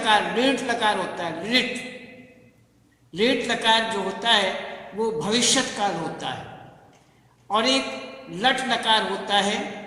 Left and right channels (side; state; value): both; identical; correlation 1.00